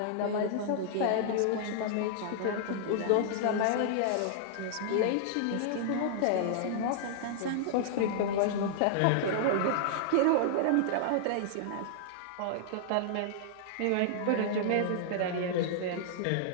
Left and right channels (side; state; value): both; different; correlation -0.01